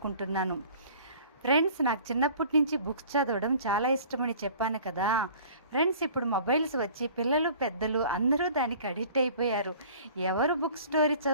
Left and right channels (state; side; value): inverted; both; correlation -0.48